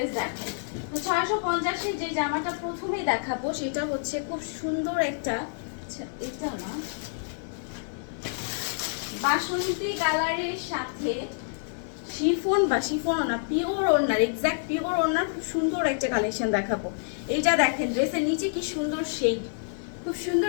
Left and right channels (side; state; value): right; silent; digital silence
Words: দেখাই। তো 650 এর যে জামাটা প্রথমেই দেখাবো সেটা হচ্ছে খুব সুন্দর একটা, আচ্ছা এটা না, বাসন্তী কালারের সাথে শিফন বা শিফনও না, পিওর ওড়নার, এক্সাক্ট পিওর ওড়নার খুব সুন্দর একটা কালেকশন দেখাবো। এইটা দেখেন, ড্রেসের নিচে কি সুন্দর শেড, খুব